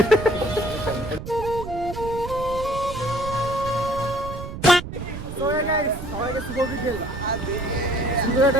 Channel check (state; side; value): noise; right; rumble, 9 dB below the sound